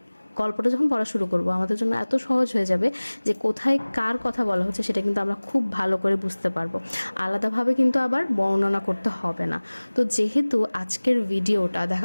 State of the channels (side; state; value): both; inverted; correlation -1.00